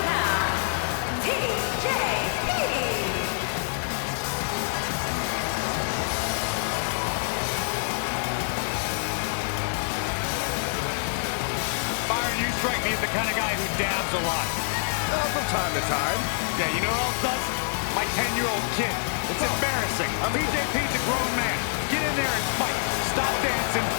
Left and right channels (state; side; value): silent; right; digital silence